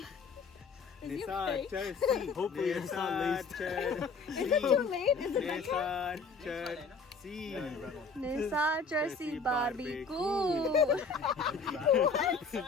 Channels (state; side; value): quieter; right; 4.5 dB